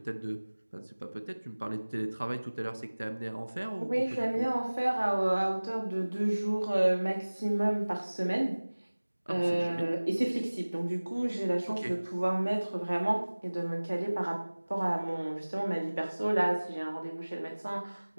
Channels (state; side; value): inverted; both; correlation -1.00